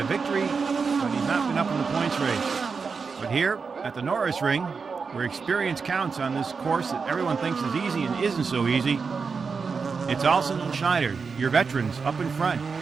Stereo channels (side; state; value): left; quieter; 5.2 dB